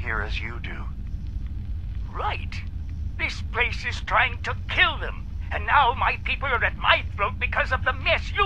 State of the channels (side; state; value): both; identical; correlation 1.00